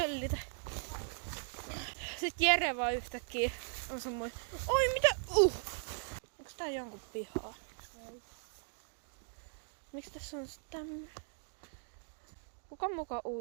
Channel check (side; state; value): left; silent; digital silence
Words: Sitten Jere vaan yhtäkkiä on semmoinen. Oi mitä? Onks tää jonkun pihaa? Ei. Miksi tässä on tämmönen? Kuka muka